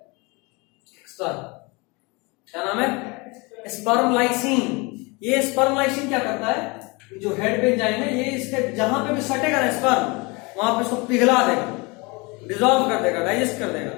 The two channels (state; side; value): quieter; right; 27.2 dB